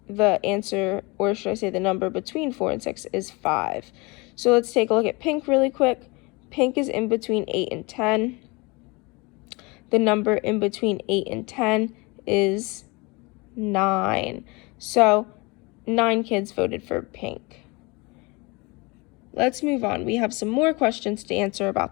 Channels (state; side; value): quieter; right; 26.6 dB